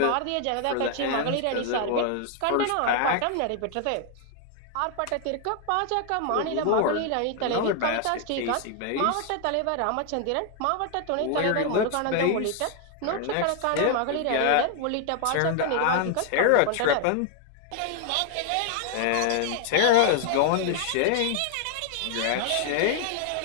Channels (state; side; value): different; both; correlation 0.00